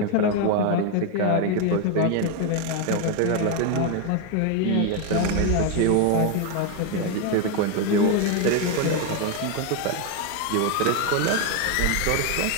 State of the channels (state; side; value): different; both; correlation 0.01